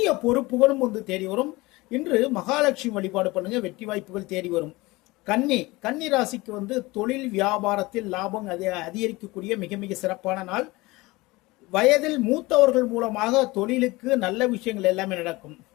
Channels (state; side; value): quieter; right; 21.7 dB